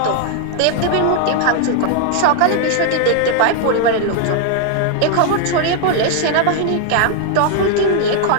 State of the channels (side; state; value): both; different; correlation 0.00